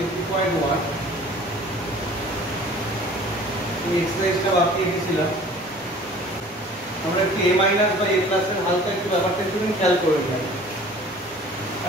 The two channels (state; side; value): normal; both; correlation 0.48